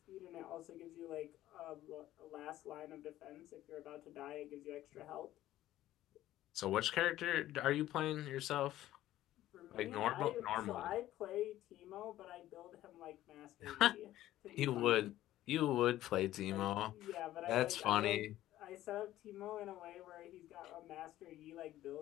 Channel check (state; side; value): quieter; right; 14.2 dB